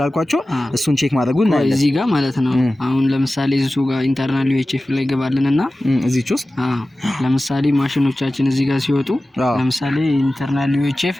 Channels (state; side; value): normal; both; correlation 0.96